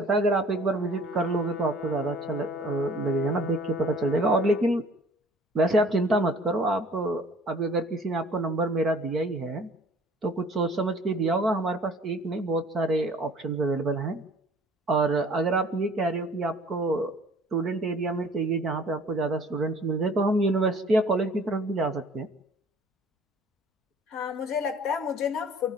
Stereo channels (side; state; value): both; normal; correlation 0.51